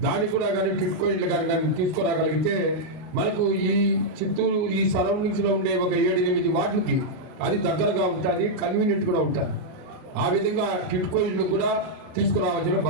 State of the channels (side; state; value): left; late; 39 ms